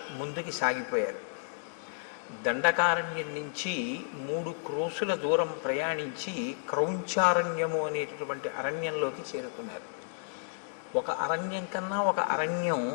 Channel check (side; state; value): right; silent; digital silence